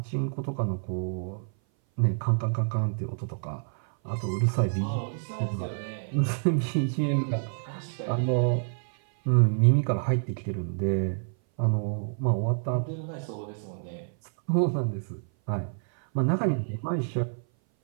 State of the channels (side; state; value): left; silent; 58 dB below the other